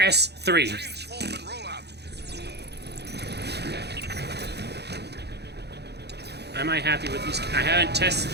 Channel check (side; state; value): left; late; 0.48 ms